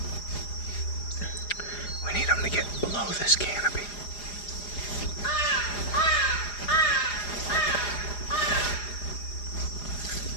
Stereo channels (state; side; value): late; right; 4.9 ms